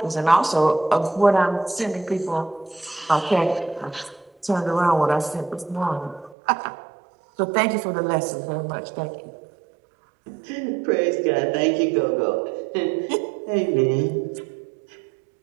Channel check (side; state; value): left; drops out; at 6.4 s